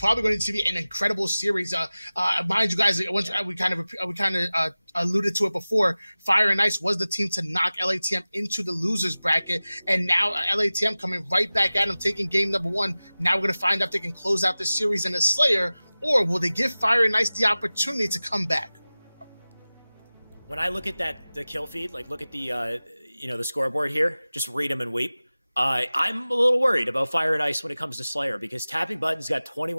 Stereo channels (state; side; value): inverted; both; correlation -0.97